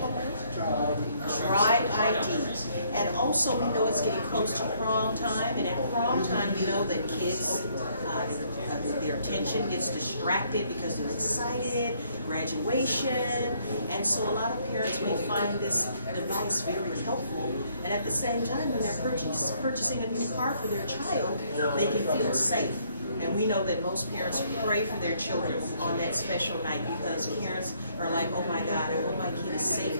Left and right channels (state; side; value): inverted; both; correlation -0.67